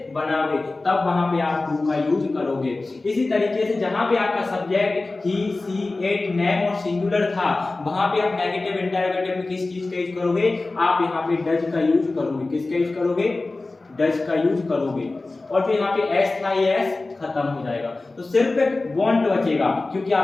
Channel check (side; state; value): right; quieter; 3.3 dB